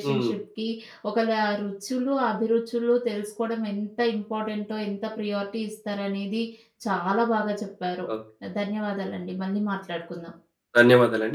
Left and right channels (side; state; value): both; identical; correlation 1.00